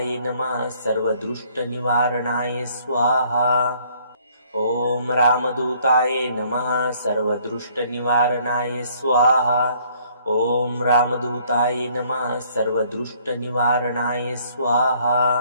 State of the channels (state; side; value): inverted; both; correlation -0.62